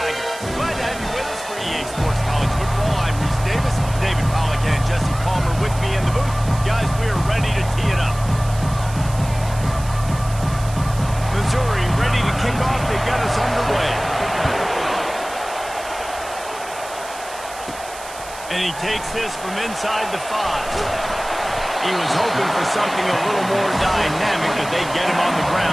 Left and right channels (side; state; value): right; noise; hiss, 15 dB below the sound